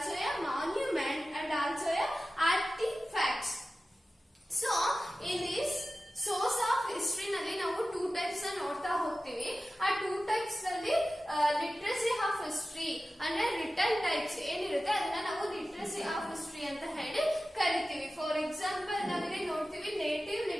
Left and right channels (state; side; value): normal; both; correlation 0.95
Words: a monument and also a artifacts. So in this source of history ನಲ್ಲಿ ನಾವು 2 types ನೋಡ್ತಾ ಹೋಗ್ತೀವಿ. ಆ 2 types ನಲ್ಲಿ literacy of history ಅಂದ್ರೆ return types ಏನಿರುತ್ತೆ ಅದನ್ನ ನಾವು ಲಿಟ್ರಸಿ ಆಫ್ ಹಿಸ್ಟ್ರಿ ಅಂತ ಹೇಳಿ ಕರಿತೀವಿ. ಫಾರ್ ಎಕ್ಸಾಂಪಲ್ ನಾವಿಲ್ಲಿ ನೋಡ್ತೀವಿ native